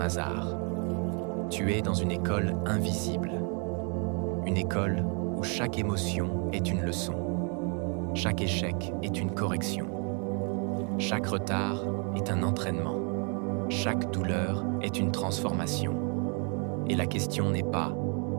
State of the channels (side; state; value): left; quieter; 37.6 dB